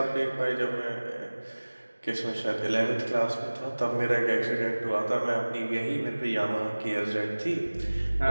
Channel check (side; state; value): both; inverted; correlation -1.00